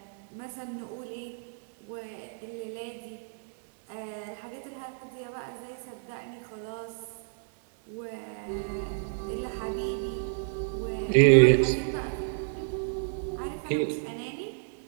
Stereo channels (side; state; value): left; silent; digital silence